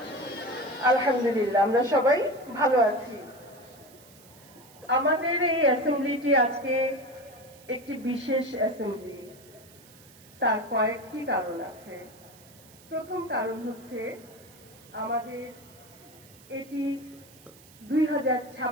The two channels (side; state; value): right; noise; hiss, 24 dB below the sound